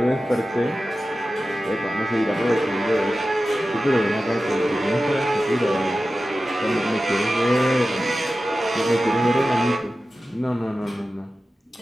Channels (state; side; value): normal; both; correlation 0.94